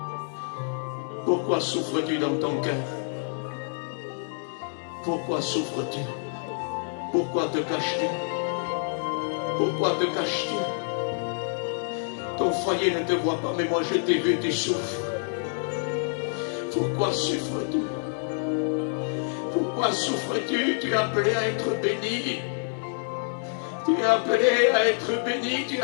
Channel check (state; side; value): silent; right; digital silence